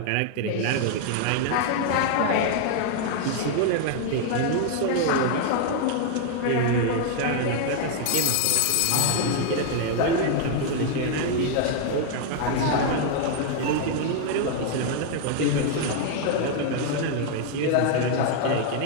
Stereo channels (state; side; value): different; both; correlation 0.00